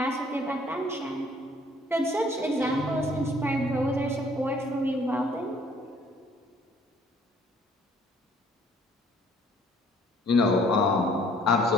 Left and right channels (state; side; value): normal; both; correlation 0.59